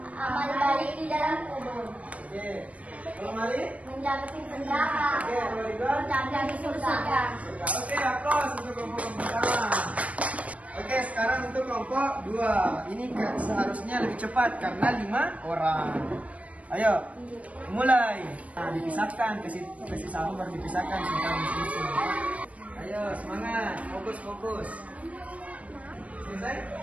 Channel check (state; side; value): late; left; 0.066 ms